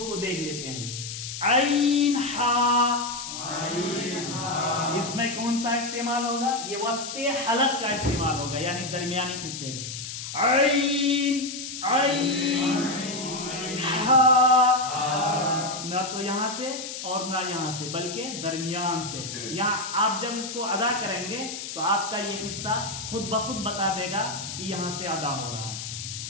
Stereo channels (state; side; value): noise; left; hiss, 8 dB below the sound